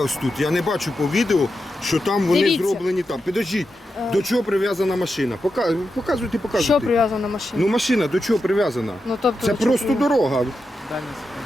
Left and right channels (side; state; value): both; normal; correlation 0.88